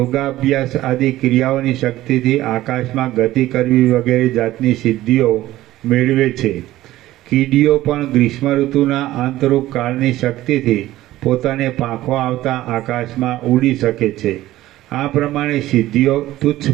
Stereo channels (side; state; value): left; quieter; 15.5 dB